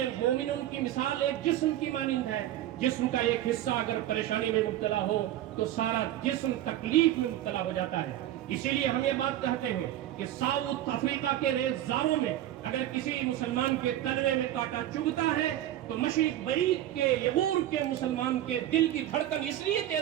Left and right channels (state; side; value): quieter; left; 12.9 dB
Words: مومنوں کی مثال ایک جسم کی مانند ہے، جسم کا ایک حصہ اگر پریشانی میں مبتلا ہو تو سارا جسم تکلیف میں مبتلا ہو جاتا ہے۔ اسی لیے ہم یہ بات کہتے ہیں کہ ساؤتھ افریقہ کے ریزداروں میں اگر کسی مسلمان کے تلوے میں کانٹا چبھتا ہے تو مشرق بعید کے یغور کے مسلمان کے دل کی دھڑکن اس لیے